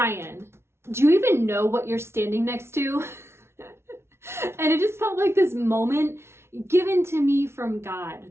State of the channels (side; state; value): left; late; 0.12 ms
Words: do you even know what you're standing next to? And it just felt like this moment given to me from God